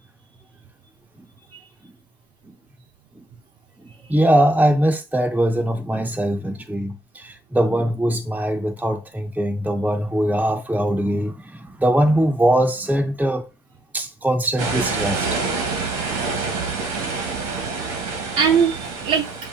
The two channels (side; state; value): both; normal; correlation 0.75